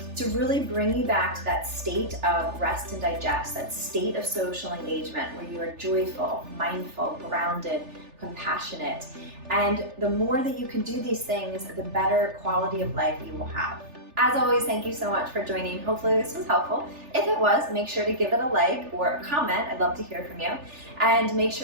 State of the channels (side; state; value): left; late; 3.4 ms